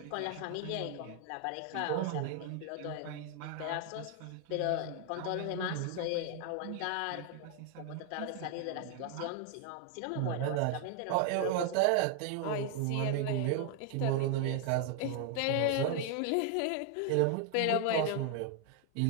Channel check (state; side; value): different; both; correlation 0.00